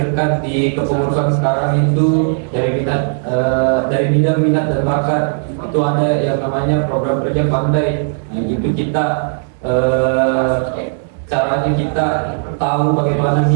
di kepengurusan sekarang itu dari bidang minat dan bakat itu ada yang namanya program kerja pandai. Nah, itu kita caranya kita tahu bagaimana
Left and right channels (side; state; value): left; silent; 66 dB below the other